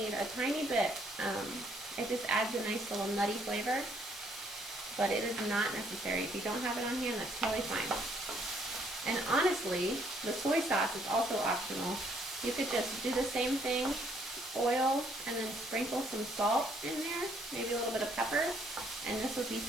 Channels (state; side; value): normal; both; correlation 0.67